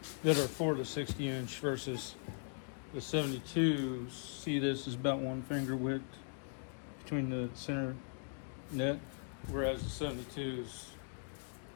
that are for the 60 inch versus the 72. See, this is about 1 finger width between the center net, whereas the 72 is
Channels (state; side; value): silent; right; 52 dB below the other